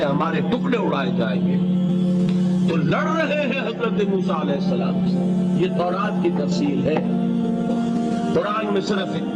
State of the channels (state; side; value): identical; both; correlation 1.00